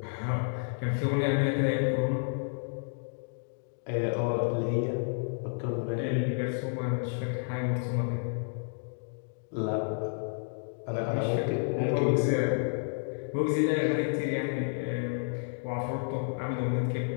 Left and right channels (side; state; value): right; silent; digital silence